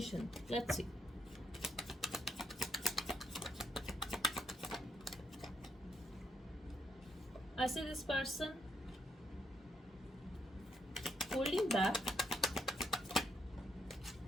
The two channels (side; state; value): both; normal; correlation 0.76